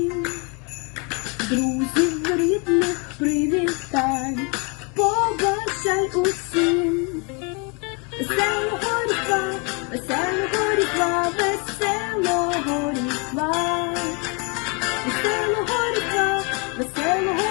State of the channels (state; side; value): quieter; right; 31.9 dB